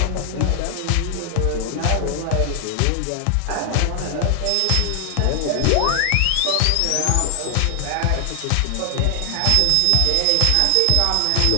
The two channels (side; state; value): both; different; correlation 0.00